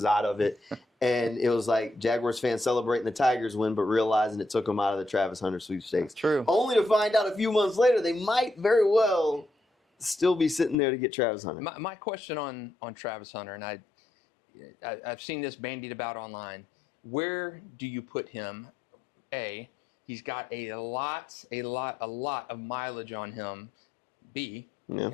out of it. And it was like Jaguars fans celebrating the Tigers win, but realizing it took them out of the Travis Hunter sweepstakes. True. Only to find out a few months later they might very well still be sitting there to get Travis Hunter. My question on Travis Hunter, and I've seen this bandied about online. Where do you put him? A, he's got a lot of mileage on him. B,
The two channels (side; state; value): right; drops out; at 10.8 s